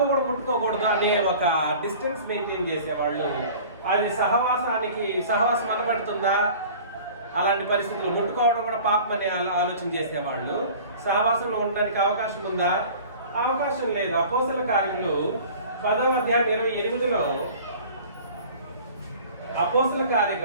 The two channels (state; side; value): inverted; both; correlation -0.44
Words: అనే ఒక డిస్టెన్స్ మెయింటైన్ చేసేవాళ్ళు. అది సహవాసం అనబడుతుందా? అలాంటి పరిస్థితులు ముట్టుకోవడం కూడా పాపం అనే ఆలోచన చేసేవాళ్ళు. సహవాసంలో ఉండడానికి అవకాశం ఉందా? అవకాశం లేదు. అపోస్తల కార్యములు 10వ అధ్యాయం 28లో, అపోస్తల కార్య